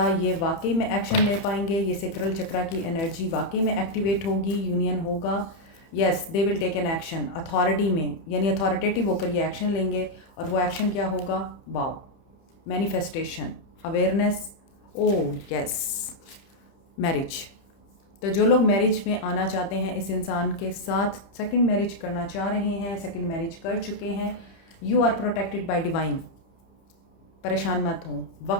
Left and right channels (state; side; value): late; right; 30 ms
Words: ये वाकई में एक्शन ले पाएंगे? ये सेक्रल चक्रा की एनर्जी वाकई में एक्टिवेट होगी, यूनियन होगा? Yes, they will take an action authority में, यानी अथॉरिटेटिव होकर ये एक्शन लेंगे। और वो एक्शन क्या होगा? Wow, manifestation, awareness. Oh yes, marriage. तो जो लोग मैरिज में आना चाहते हैं इस इंसान के साथ, सेकंड मैरिज करना चाह रहे हैं, सेकंड मैरिज कर चुके हैं, you are protected by divine. परेशान मत हो।